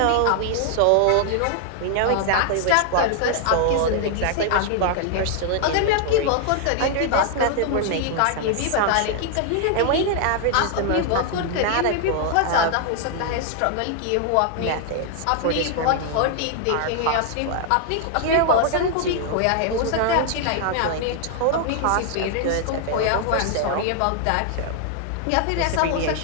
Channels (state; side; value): different; both; correlation 0.00